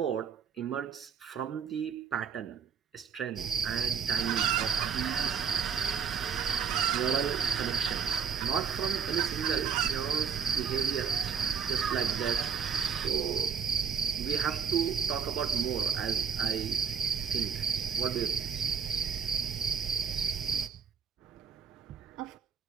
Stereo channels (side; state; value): left; quieter; 6.8 dB